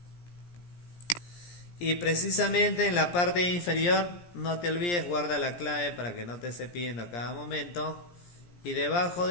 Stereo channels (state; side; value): late; right; 17 ms